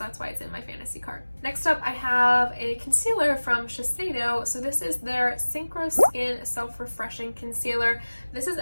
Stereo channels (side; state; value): both; inverted; correlation -1.00